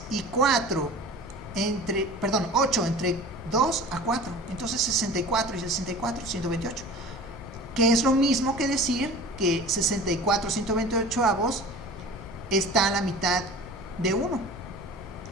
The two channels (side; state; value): left; noise; hum, 22 dB below the sound